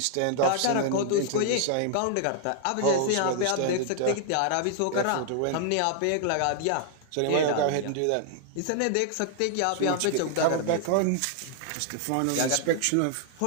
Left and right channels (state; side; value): different; both; correlation -0.01